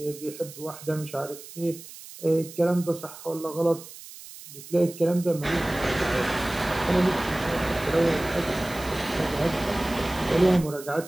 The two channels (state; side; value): noise; right; hiss, 16 dB below the sound